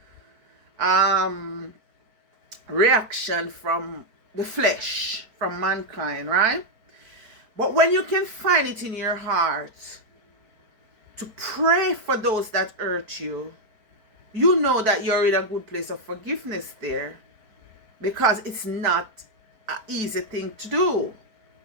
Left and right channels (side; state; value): left; late; 4.6 ms